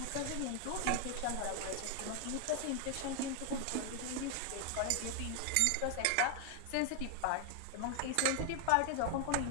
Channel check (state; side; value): different; both; correlation 0.00